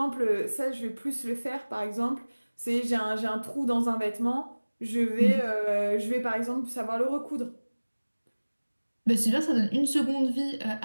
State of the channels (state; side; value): inverted; both; correlation -1.00